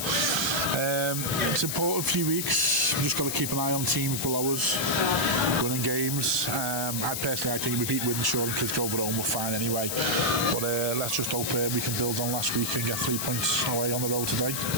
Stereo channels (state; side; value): noise; left; hiss, 2 dB below the sound